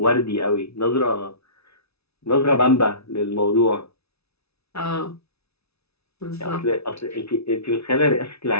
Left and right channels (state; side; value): late; right; 0.79 ms